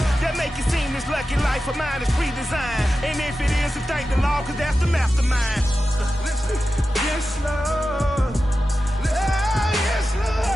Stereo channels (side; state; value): both; normal; correlation 0.92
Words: that make it seem this lucky life of mine is pre-designed. And if it is, then thank the Lord, cause that's the mastermind. Yes, Lord. Yes,